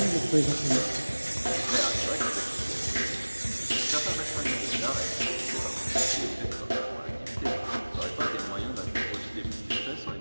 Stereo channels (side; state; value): both; inverted; correlation -1.00